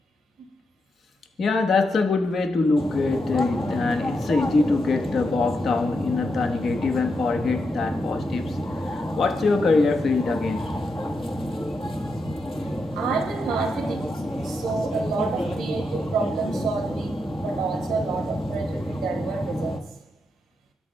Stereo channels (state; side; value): normal; both; correlation 0.84